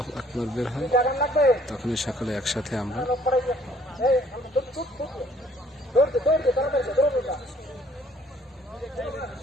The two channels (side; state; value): both; normal; correlation 0.60